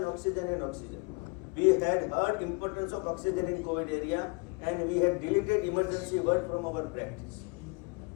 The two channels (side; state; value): right; quieter; 31.0 dB